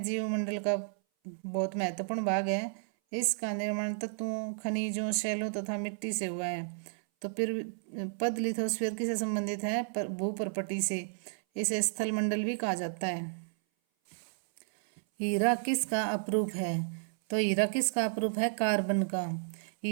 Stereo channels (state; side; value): silent; left; 56 dB below the other